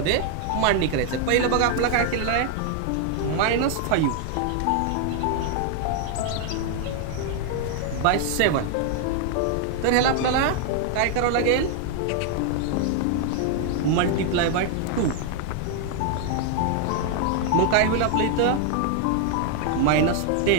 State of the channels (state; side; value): different; both; correlation 0.00